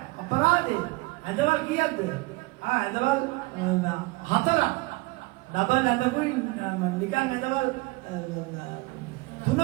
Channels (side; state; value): left; quieter; 23.5 dB